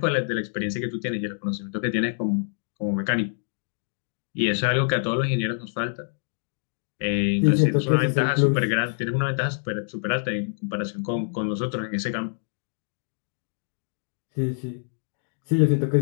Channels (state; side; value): silent; right; digital silence